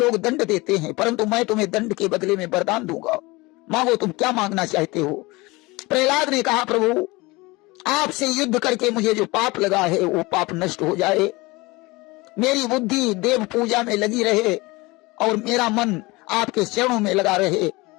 दंड देते हैं, परंतु मैं तुम्हें दंड के बदले में वरदान दूंगा। मांगो, तुम क्या मांगना चाहते हो? प्रहलाद ने कहा, प्रभु, आपसे युद्ध करके मुझे जो पाप लगा है वो पाप नष्ट हो जाए, मेरी बुद्धि देव पूजा में लगी रहे और मेरा मन आपके चरणों में लगा रहे।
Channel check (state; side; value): quieter; right; 22.9 dB